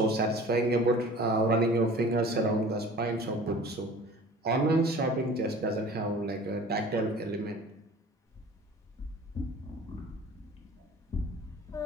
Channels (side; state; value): both; normal; correlation 0.44